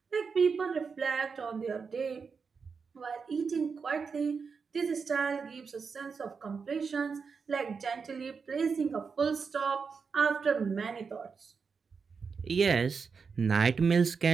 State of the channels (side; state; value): left; quieter; 5.4 dB